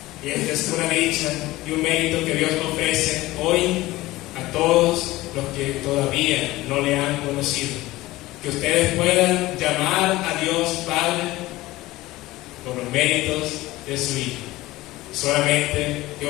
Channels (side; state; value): right; quieter; 18.2 dB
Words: Y esta es una dicha y un mérito que Dios ofrece hoy a todos los que todavía no le han conocido. Que ustedes puedan llamar a Dios Padre por los méritos de su Hijo. Solamente que